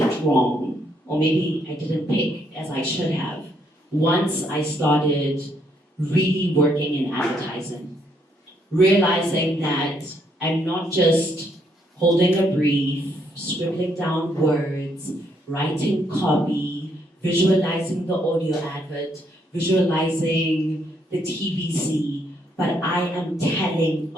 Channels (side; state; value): both; normal; correlation 0.72